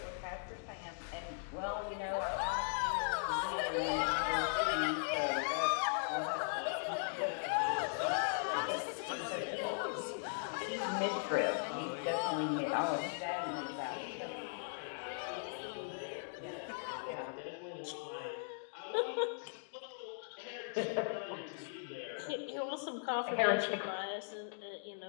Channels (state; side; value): silent; right; digital silence